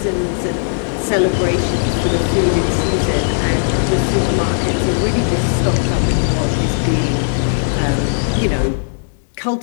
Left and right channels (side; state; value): right; silent; 68 dB below the other